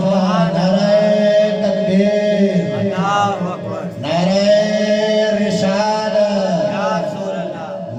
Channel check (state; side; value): identical; both; correlation 1.00